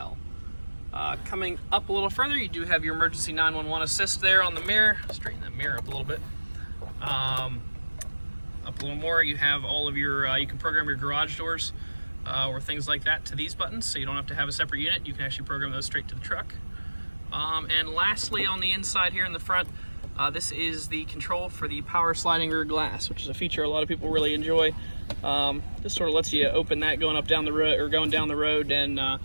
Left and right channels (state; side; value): inverted; both; correlation -1.00